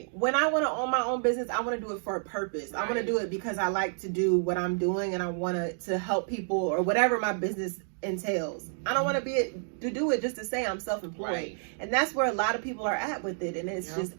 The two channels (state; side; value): silent; left; digital silence